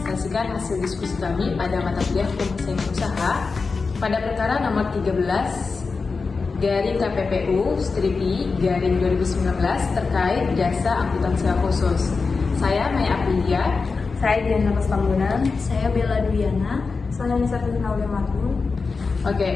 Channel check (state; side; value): quieter; right; 4.5 dB